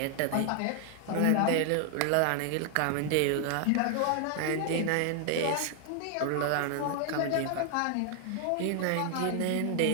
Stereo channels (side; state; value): both; different; correlation 0.00